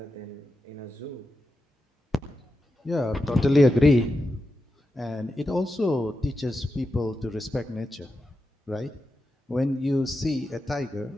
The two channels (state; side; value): normal; both; correlation 0.89